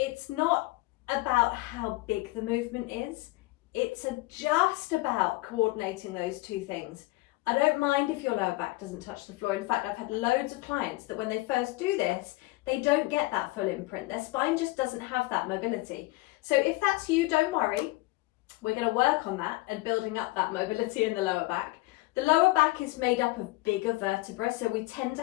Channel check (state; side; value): quieter; right; 20.8 dB